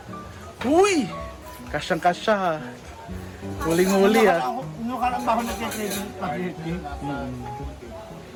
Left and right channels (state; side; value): identical; both; correlation 1.00